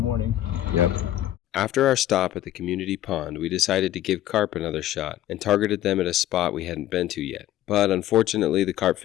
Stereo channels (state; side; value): quieter; right; 13.2 dB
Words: morning. Yep. After our stop at the community pond, we decided to give carp another shot and targeted them at a spot we hadn't been to yet. But unfortunately, the carp